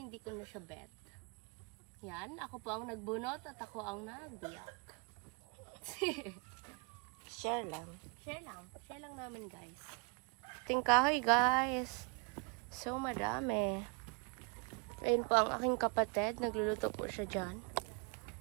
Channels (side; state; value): left; quieter; 34.3 dB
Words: hindi ko na siya bet. Yan, ako po ang nagbunot at ako ang nagbiyak. Share lang. Share lang. Share lang namin guys. Tingkahoy guys. So madami. Ayun po ang aking kapatid. Nagluluto po siya dyan.